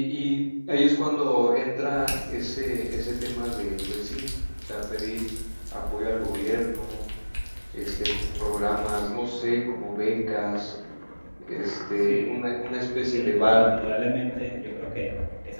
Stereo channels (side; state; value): both; inverted; correlation -1.00